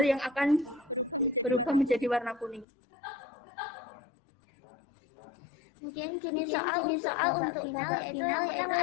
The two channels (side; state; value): right; drops out; at 2.7 s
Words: yang akan berubah menjadi warna kuning. Kemudian jenis soal untuk babak final yaitu